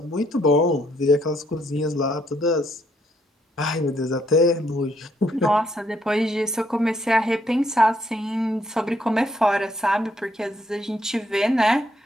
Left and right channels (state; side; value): normal; both; correlation 0.71